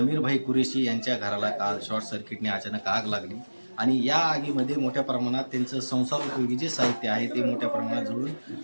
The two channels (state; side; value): inverted; both; correlation -1.00